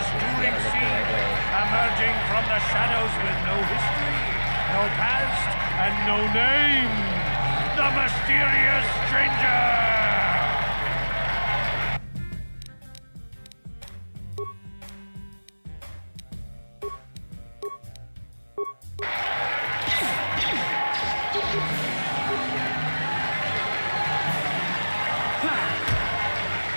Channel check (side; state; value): both; inverted; correlation -1.00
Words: touring scene, emerging from the shadows with no history, no past, and no name, the mysterious stranger!